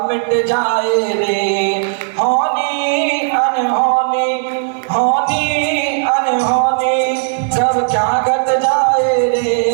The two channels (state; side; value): silent; left; digital silence